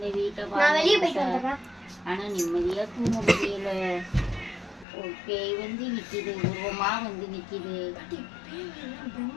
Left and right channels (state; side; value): drops out; right; at 4.9 s